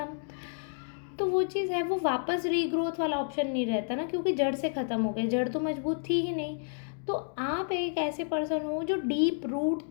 तो वो चीज़ है, वो वापस रीग्रोथ वाला ऑप्शन नहीं रहता ना, क्योंकि जड़ से ख़त्म हो गए, जड़ तो मजबूत थी ही नहीं। तो आप एक ऐसे पर्सन हो जो डीप रूट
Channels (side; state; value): right; silent; digital silence